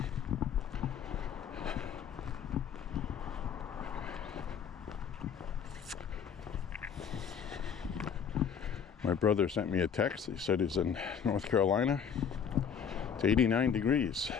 My brother sent me a text. He said he's in North Carolina. It's 89 degrees.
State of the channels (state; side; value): quieter; right; 7.4 dB